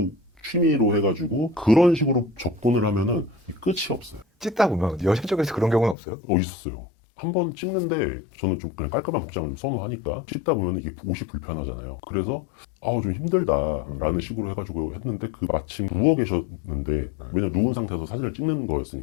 취미로 해가지고 그런 식으로 접근을 하면은 끝이 없어요. 찍다 보면 여자 쪽에서 그런 경우는 없어요? 있었어요. 한 번 찍는데 저는 좀 그냥 깔끔한 복장을 좀 선호하니까 찍다 보면 이게 옷이 불편하잖아요. 그래서 좀 힘들다라는 식으로 해가지고 했는데 그 마침 누워 계셨는데 왜냐면 누운 상태에서 사진을 찍는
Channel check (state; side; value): drops out; right; at 6.0 s